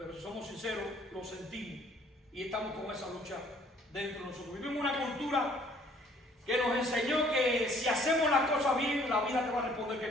si somos sinceros, lo sentimos y estamos con esa lucha dentro de nosotros. Vivimos una cultura que nos enseñó que si hacemos las cosas bien, la vida te va a responder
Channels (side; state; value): both; normal; correlation 0.59